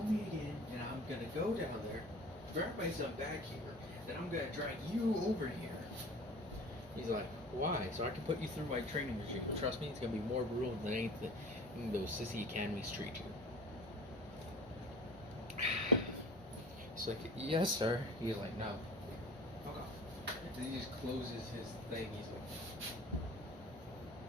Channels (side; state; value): both; normal; correlation 0.41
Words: me again, and I'm gonna go down there, grab my son back here, then I'm gonna drag you over here. He's like, why? So I can put you through my training regime. Trust me, it's gonna be more brutal than anything those sissy academies treat you. He's like, yes, sir. He's like, no. Fuck off. And he just closes his thing. He's like,